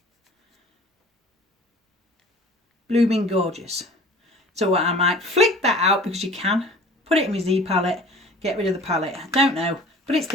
Blooming gorgeous. So I might flick that out because you can. Put it in my Z palette. Get rid of the palette. I don't know. But it's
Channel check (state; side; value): normal; both; correlation 0.45